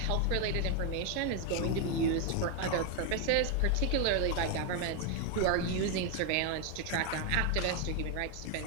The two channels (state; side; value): different; both; correlation 0.01